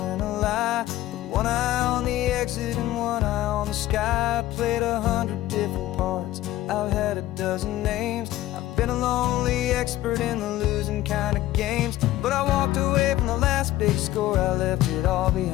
a lie. With one eye on the exit and one eye on the sky. I played 100 different parts, I've had a dozen names. I've been a lonely expert in the losing kind of games. But I walked away from the last big score, I left it all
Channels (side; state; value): right; quieter; 15.1 dB